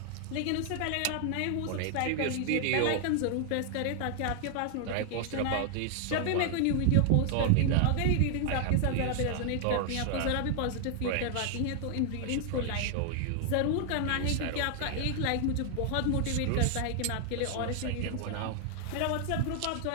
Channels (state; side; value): different; both; correlation 0.00